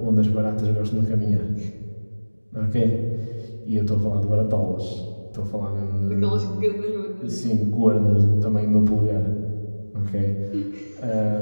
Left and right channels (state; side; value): inverted; both; correlation -1.00